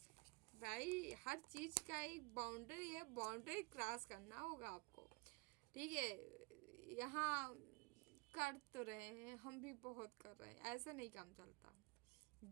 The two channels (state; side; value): quieter; left; 25.9 dB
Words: भाई। हर चीज़ का एक बाउंड्री है, बाउंड्री क्रॉस करना होगा आपको, ठीक है। यहाँ कर तो रहे हैं, हम भी बहुत कर रहे हैं, ऐसा नहीं काम चलता।